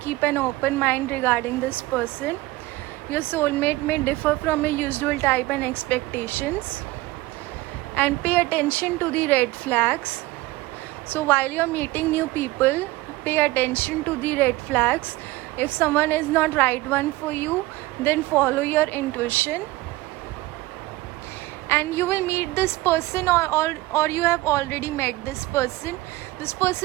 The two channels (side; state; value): left; quieter; 19.2 dB